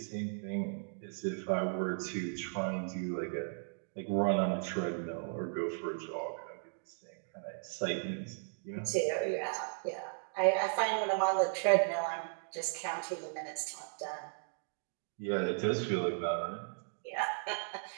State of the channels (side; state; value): left; silent; digital silence